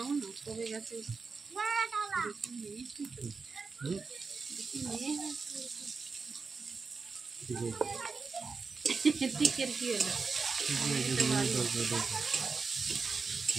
না কবে গেছে টিকের কি হলো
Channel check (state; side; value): quieter; left; 4.7 dB